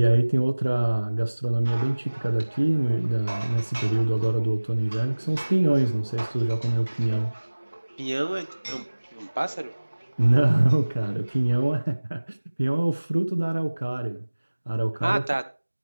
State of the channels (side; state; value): both; inverted; correlation -1.00